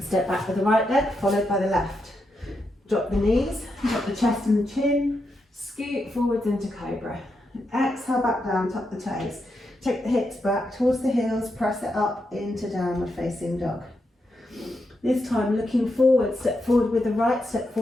back with the right leg, followed by the left. Drop the knees, drop the chest and the chin. Scoot forwards into cobra. Exhale, back down, tuck the toes. Take the hips back towards the heels, press it up into downward facing dog. This time looking forward, step forward with the right, step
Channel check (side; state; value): both; normal; correlation 0.84